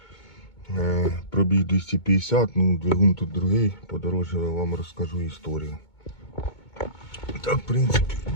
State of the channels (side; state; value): right; late; 2.2 ms